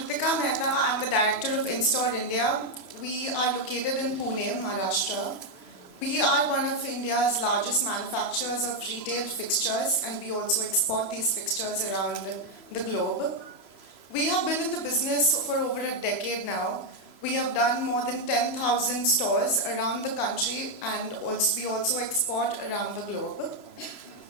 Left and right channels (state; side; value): late; right; 3.0 ms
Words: Mehta. I'm the director of InStore India. We are located in Pune, Maharashtra. We are one of India's largest manufacturers of retail fixtures, and we also export these fixtures around the globe. We have been in the business for over a decade now. We have done more than 10,000 stores around the country, and we also export around the globe.